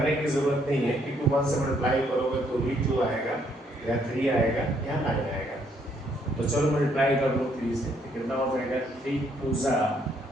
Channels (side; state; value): both; normal; correlation 0.69